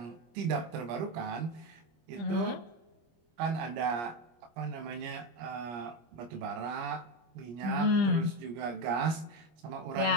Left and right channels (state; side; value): late; left; 25 ms